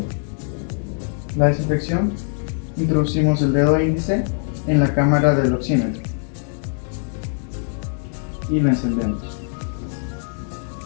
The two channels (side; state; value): right; silent; 57 dB below the other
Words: la desinfección, Introducimos el dedo índice en la cámara del oxímetro y lo encendemos.